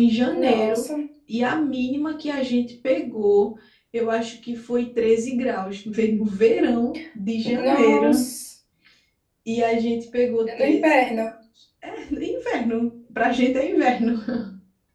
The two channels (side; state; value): both; identical; correlation 1.00